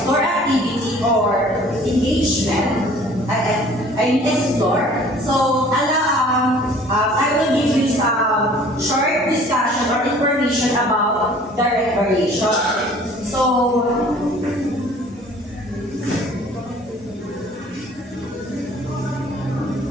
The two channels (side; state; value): both; normal; correlation 0.51